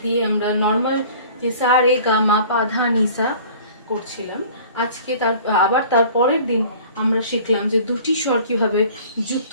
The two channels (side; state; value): both; inverted; correlation -0.47